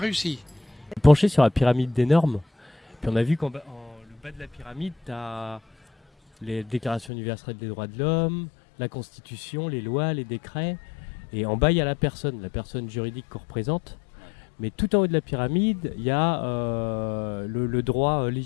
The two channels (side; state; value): right; drops out; at 7.1 s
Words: Penché sur la pyramide des normes. Puis on a vu qu'en le bas de la pyramide, tu as les déclarations universelles des droits de l'homme, la Constitution, les lois, les décrets. Et en bas, il y a la personne juridique qu'on représente. Mais tout en haut de la pyramide, il y a le droit